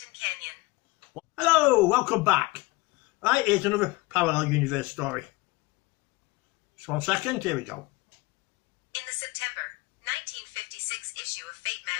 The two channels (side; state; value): right; quieter; 22.4 dB